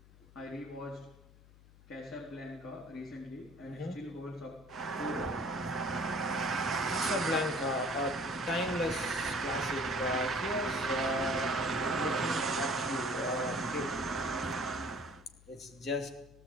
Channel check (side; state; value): left; noise; hum, 23 dB below the sound